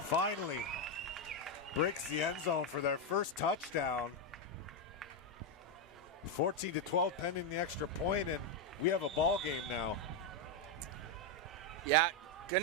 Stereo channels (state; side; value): normal; both; correlation 0.04